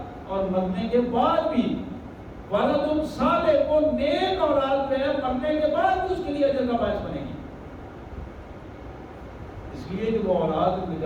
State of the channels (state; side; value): identical; both; correlation 1.00